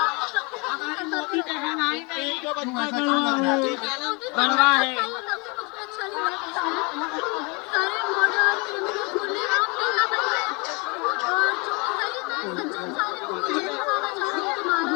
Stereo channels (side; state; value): right; quieter; 29.7 dB